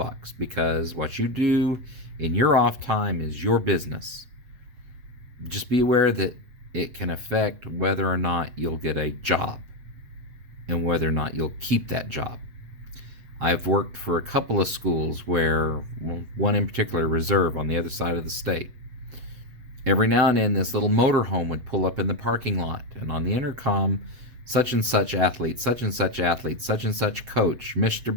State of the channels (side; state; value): left; late; 7.9 ms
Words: because what you do in your off time is your business. Just be aware that it can affect whether or not you'll get a job and whether or not you'll keep that job. I've worked for a couple of schools where, one in particular, Reserve, on the other side of the state. Every now and then this little motorhome would pull up in the parking lot, and on the intercom, such and such athlete, such and such athlete, such and such coach, Mr.